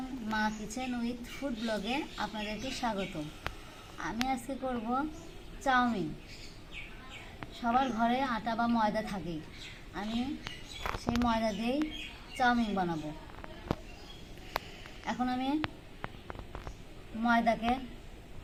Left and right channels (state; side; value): identical; both; correlation 1.00